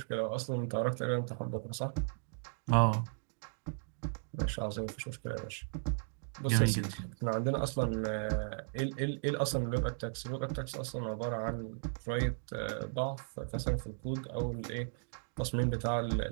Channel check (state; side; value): silent; left; digital silence